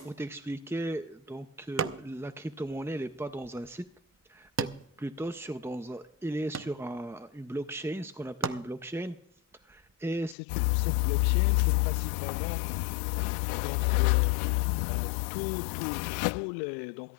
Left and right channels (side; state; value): right; drops out; at 10.4 s